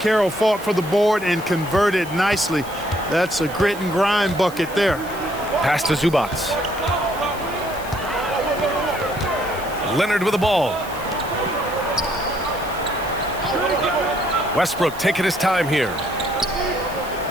fought for the board and converted nicely. That's a grit and grind bucket there. Pass to Zubats. Leonard with the ball. Westbrook taking his time here.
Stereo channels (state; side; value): noise; right; hiss, 17 dB below the sound